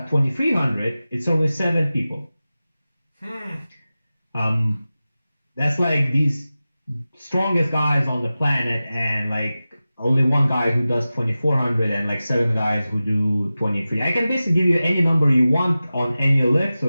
2300, it's only 7 people. That's like these strongest guys on the planet, and like only one guy who does 2400 and like 7 guys who do 23. I can basically give you any number you want on any lift. So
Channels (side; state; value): both; inverted; correlation -0.95